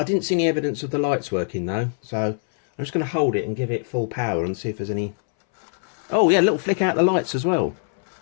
didn't see any evidence of the lights working though, so I'm just going to hold it and give it full power and see if there's any... Oh yeah, a little flick out the lights as well.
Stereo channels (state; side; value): silent; right; 62 dB below the other